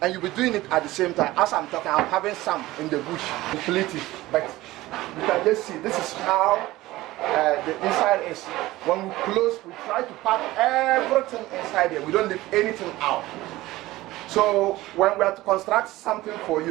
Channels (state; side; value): quieter; left; 17.7 dB